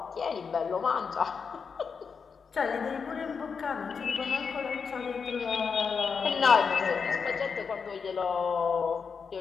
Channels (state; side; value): quieter; right; 5.8 dB